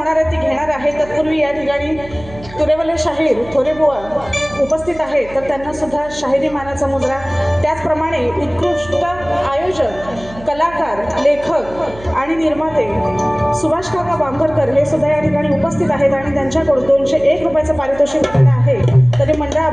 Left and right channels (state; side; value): noise; right; hum, 18 dB below the sound